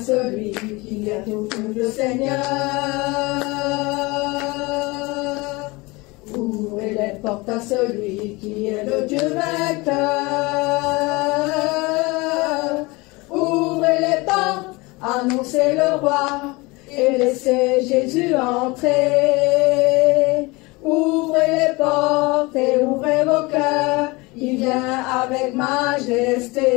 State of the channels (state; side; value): quieter; right; 24.3 dB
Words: qui est au fond le Seigneur. Ouvrez les portes à celui qui est le Dieu vainqueur. Ouvrez les portes, annoncez le roi et laissez Jésus entrer. Ouvrez les portes et ouvrez vos cœurs, il vient avec majesté.